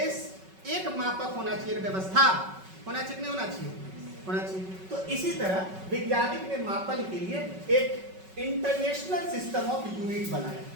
एक मापक होना चाहिए, व्यवस्था होना चाहिए, नहीं होना चाहिए? होना चाहिए। तो इसी तरह वैज्ञानिक ने मापन के लिए एक इंटरनेशनल सिस्टम ऑफ यूनिट बनाया।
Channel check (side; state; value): left; late; 5.3 ms